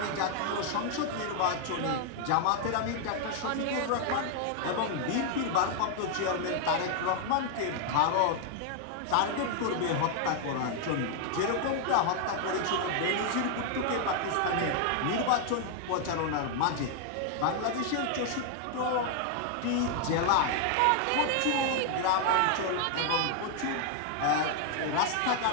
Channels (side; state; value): both; different; correlation 0.00